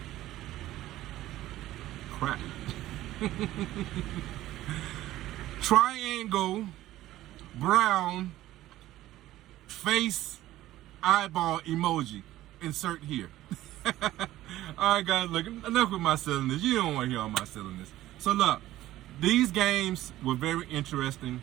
Crap. Triangle, brown, face, eyeball emoji. Insert here. All right, guys, look, enough with my silliness. You don't want to hear all my silliness. So look, these games were very interesting.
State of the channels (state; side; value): quieter; left; 15.0 dB